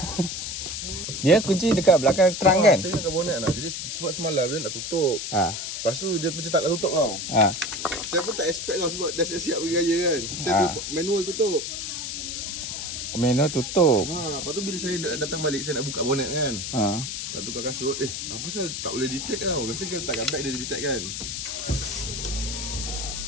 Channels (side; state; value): left; noise; hiss, 5 dB below the sound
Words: Dia kunci dekat belakang terang kan? Saya ingatkan bonet nak. Jadi sebab semalam dia nak tutup. Lepas tu dia macam tak nak tutup tau. Saya pun tak expect tau sebab dah siap-siap pergi raya kan. Saya tu manual tutup. Manual tutup. Lepas tu bila saya datang balik saya nak buka bonet kan. Nak tukar kasut. Apa pasal tak boleh detect tau. Biasa kalau letakkan bag dia detect kan.